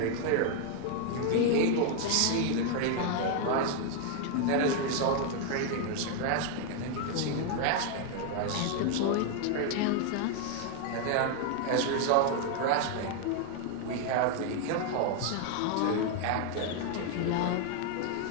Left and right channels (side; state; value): both; different; correlation 0.00